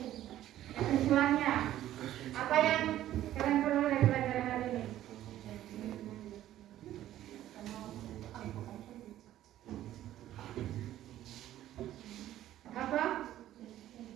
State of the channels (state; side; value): quieter; left; 13.1 dB